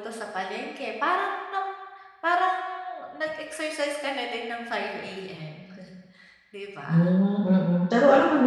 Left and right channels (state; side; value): identical; both; correlation 1.00